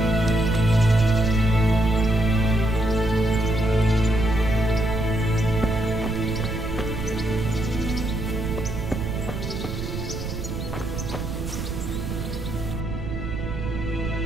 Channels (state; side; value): noise; right; rumble, 6 dB below the sound